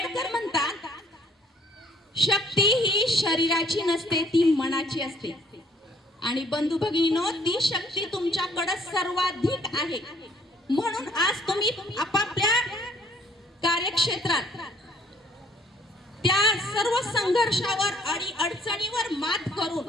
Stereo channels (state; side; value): normal; both; correlation 0.62